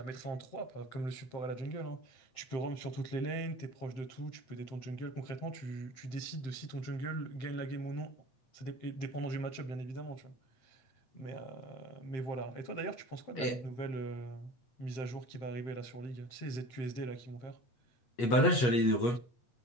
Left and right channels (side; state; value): right; late; 8.3 ms